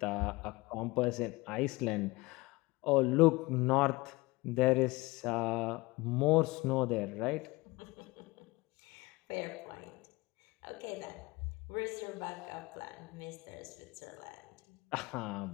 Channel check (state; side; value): quieter; right; 22.8 dB